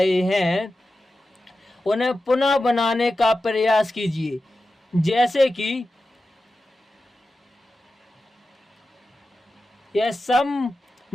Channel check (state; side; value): normal; both; correlation 0.93